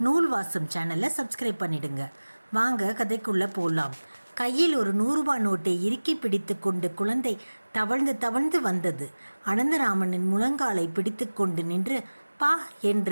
நூல் வாசம் சேனலை சப்ஸ்கிரைப் பண்ணிடுங்க. வாங்க கதைக்குள்ளே போகலாம். கையில் ஒரு 100 ரூபாய் நோட்டை இறுக்கி பிடித்து கொண்டு குழந்தை தவழ்ந்து தவழ்ந்து வந்தது. அனந்தராமனின் முழங்காலை பிடித்து கொண்டு நின்று பா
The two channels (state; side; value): inverted; both; correlation -1.00